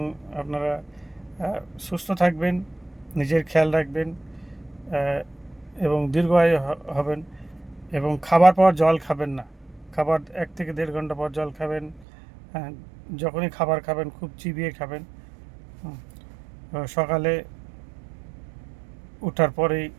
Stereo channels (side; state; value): left; drops out; at 12.1 s